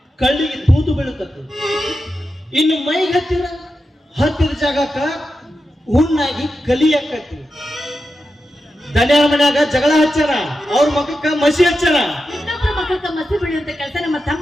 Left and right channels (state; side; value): normal; both; correlation 0.89